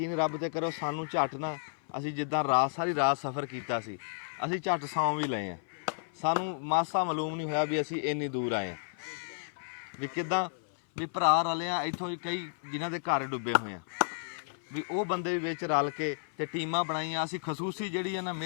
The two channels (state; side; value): silent; right; 56 dB below the other